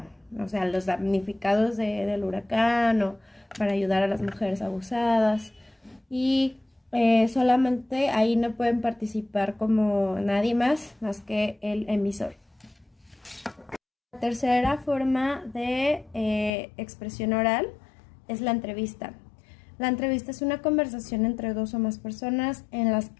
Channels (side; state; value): right; drops out; at 16.5 s